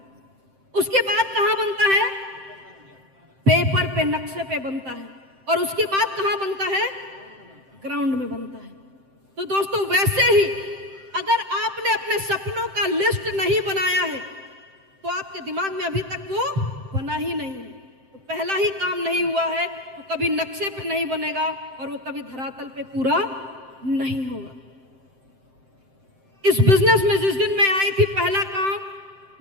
उसके बाद कहां बनता है? पेपर पे, नक्शे पे बनता है। और उसके बाद कहां बनता है? ग्राउंड में बनता है। तो दोस्तों, वैसे ही अगर आपने अपने सपनों का लिस्ट नहीं बनाया है तो आपके दिमाग में अभी तक वो बना ही नहीं है। तो पहला ही काम नहीं हुआ है तो कभी नक्शे पे नहीं बनेगा और वो कभी धरातल पे पूरा नहीं होगा। इस बिजनेस में जिस दिन मैं आई थी, पहला काम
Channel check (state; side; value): late; left; 7.7 ms